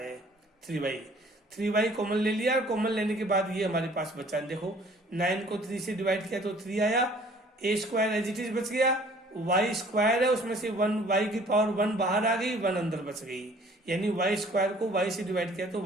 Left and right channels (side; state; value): both; normal; correlation 0.54